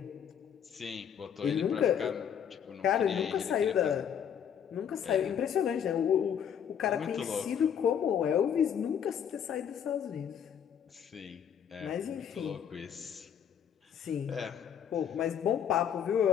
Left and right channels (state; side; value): quieter; right; 8.5 dB